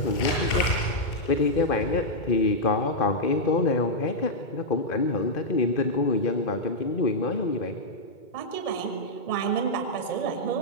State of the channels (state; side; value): late; right; 2.2 ms